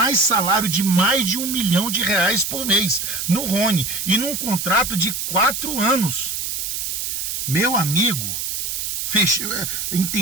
salário de mais de R$1 milhão por mês no Rony, e num contrato de 4 anos. Meu amigo,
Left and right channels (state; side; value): noise; right; hiss, 3 dB below the sound